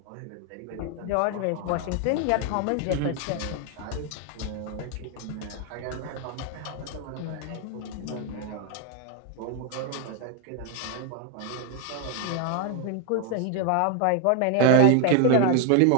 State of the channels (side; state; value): both; different; correlation 0.00